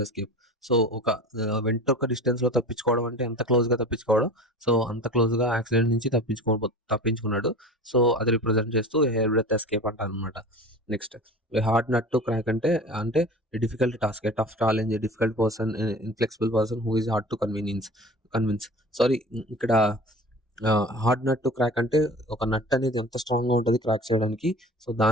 ఎస్కేప్. సో ఒక వెంట్రుక డిస్టెన్స్ లో తప్పించుకోవడం అంటే ఎంత క్లోజ్ గా తప్పించుకోవడం. సో అంత క్లోజ్ గా యాక్సిడెంట్ నుంచి తప్పించుకున్నాడు. సో అది రిప్రజెంట్ చేస్తూ హెయిర్ బ్రెత్ ఎస్కేప్ అంటారు అనమాట. Next hard nut to crack అంటే difficult task, tough challenge, difficult person, inflexible person who is hard to convince. Sorry, ఇక్కడ హార్డ్ నట్ టు క్రాక్ అంటే ఒక నట్ అనేది ఎంత స్ట్రాంగ్ గా ఉంటుంది క్రాక్ చేయడానికి. సో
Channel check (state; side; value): normal; both; correlation 0.38